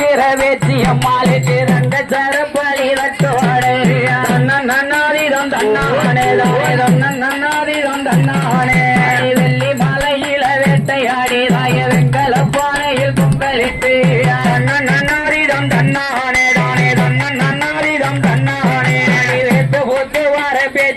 வேச்சி அம்மாளுக்கு ரெண்டு சரப்பலி தட்டோடே நன்னாதீரம் தன்னானே தானே நன்னாதீரம் தன்னானே வெள்ளி மலையில வேட்டையாடி தாய வெங்கல பானையில் பொங்கலிட்டு நன்னாதீரம் தன்னானே தானே நன்னாதீரம் தன்னானே வேட்டு போட்டு வர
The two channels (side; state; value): both; identical; correlation 1.00